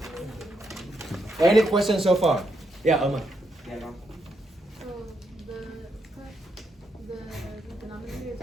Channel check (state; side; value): normal; both; correlation 0.79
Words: Any questions so far? Yeah, Irma. So the denominator is